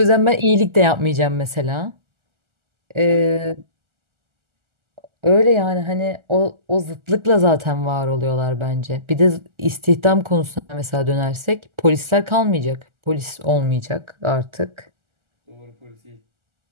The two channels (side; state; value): left; late; 1.4 ms